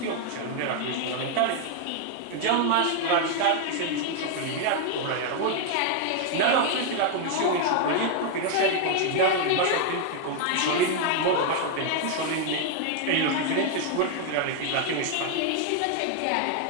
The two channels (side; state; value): both; different; correlation 0.00